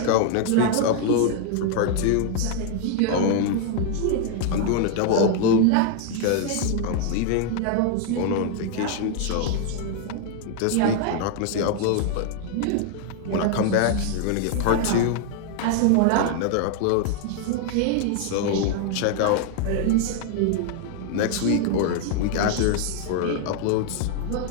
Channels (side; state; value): both; different; correlation 0.00